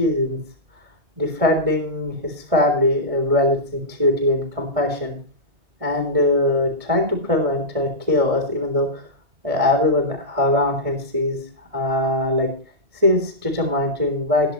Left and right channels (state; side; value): late; left; 1.6 ms